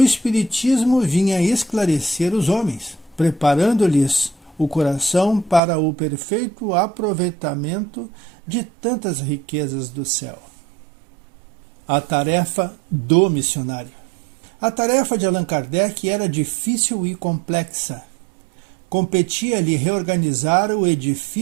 vinha esclarecer os homens, preparando-lhes o coração para o perfeito aproveitamento de tantas riquezas do céu. A tarefa do missionário. A tarefa de Allan Kardec era difícil e complexa. Competia-lhe reorganizar o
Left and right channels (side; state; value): left; drops out; at 5.6 s